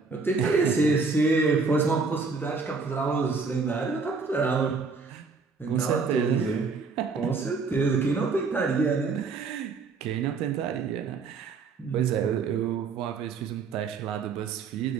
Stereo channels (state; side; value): quieter; left; 4.6 dB